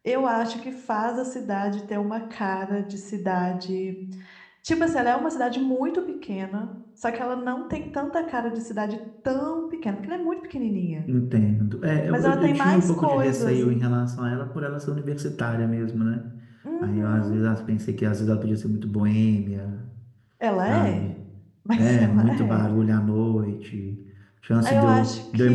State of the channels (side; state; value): both; identical; correlation 1.00